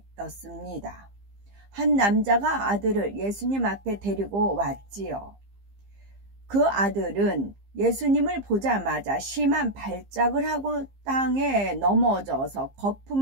한 남자가 아들을 예수님 앞에 데리고 왔지요. 그 아들은 예수님을 보자마자 심한 발작을 하고 땅에 넘어져서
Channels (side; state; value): left; late; 15 ms